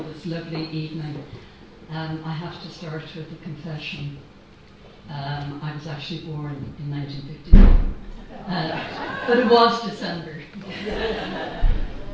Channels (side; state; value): both; identical; correlation 1.00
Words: this lovely evening. I have to start with a confession. I was actually born in 1959, but it was December.